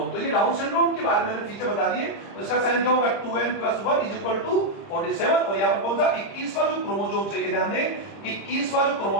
तो ये डाउन सिंड्रोम के बारे में मैंने फीचर बता दिए, तो इसका साइन क्या होगा, 2n + 1 = 47, और यहाँ पर कौन सा 21वां जो क्रोमोसोम है, ये ध्यान दें 21वां जो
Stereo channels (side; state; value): right; late; 30 ms